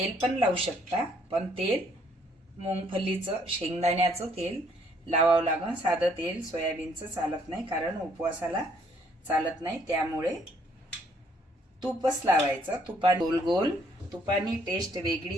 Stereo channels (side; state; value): both; normal; correlation 0.66